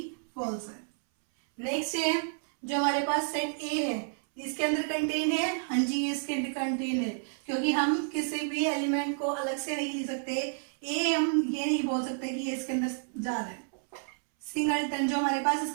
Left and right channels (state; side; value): silent; left; 58 dB below the other